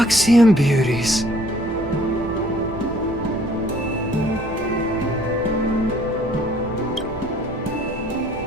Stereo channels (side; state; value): right; noise; rumble, 13 dB below the sound